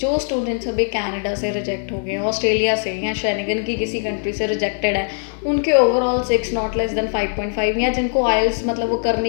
स्टूडेंट्स अभी कनाडा से रिजेक्ट हो गए, ऑस्ट्रेलिया से या शेनिगन की किसी कंट्री से रिजेक्टेड है, उनके ओवरऑल 6 नॉट लेस देन 5.5, या जिनको आइल्स मतलब वो कर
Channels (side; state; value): right; silent; 56 dB below the other